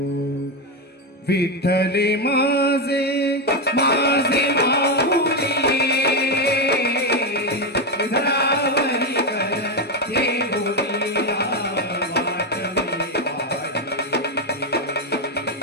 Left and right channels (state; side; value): normal; both; correlation 0.09